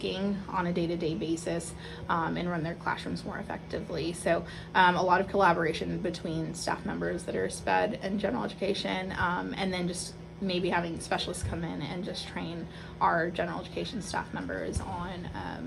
on a day-to-day basis, and run their classrooms more effectively. So a lot of collaboration between staff members that are SPED and general education, and then just maybe having specialists come in and just train our general education staff members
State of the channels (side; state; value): both; identical; correlation 1.00